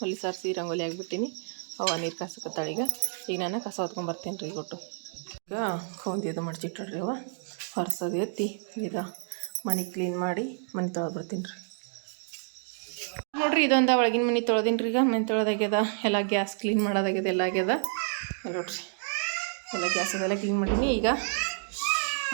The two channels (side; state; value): left; silent; digital silence